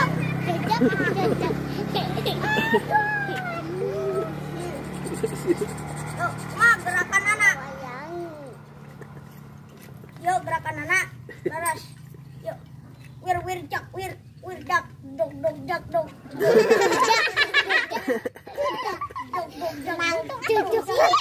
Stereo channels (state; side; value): identical; both; correlation 1.00